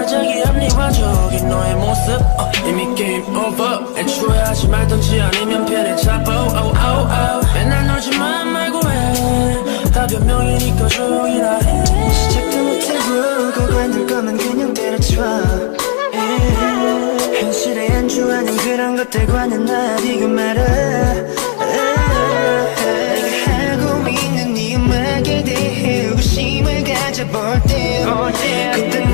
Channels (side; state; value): right; silent; digital silence